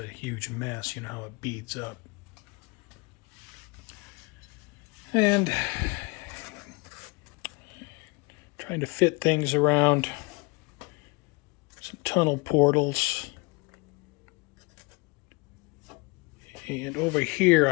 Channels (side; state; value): right; quieter; 27.2 dB